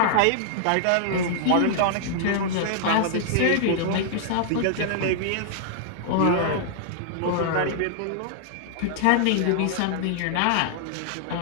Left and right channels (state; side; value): different; both; correlation -0.01